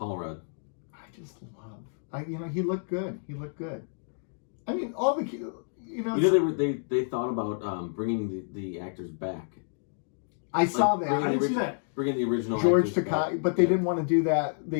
Rudd. I just love. He looked good. He looked good. I mean, all the they thought about bringing the actors back. I saw that. I didn't see that. Bringing the original George actors Takei, back. but they didn't want to do that.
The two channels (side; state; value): right; silent; digital silence